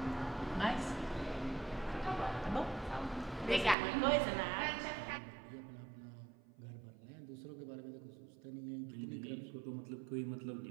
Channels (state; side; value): drops out; left; at 3.8 s